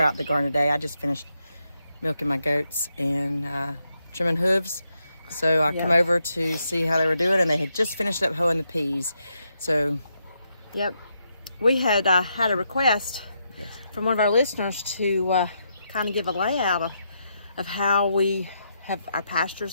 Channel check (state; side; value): inverted; both; correlation -0.81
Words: out in the garden today. I just finished milking my goats and trimming hooves. So I come over to see how they were doing, and they had just finished up hoeing the peas. So, we had had a request from one of our listeners to kind of give a layout of how we have our pastures